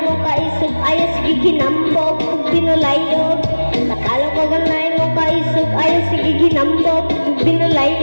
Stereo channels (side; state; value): both; inverted; correlation -1.00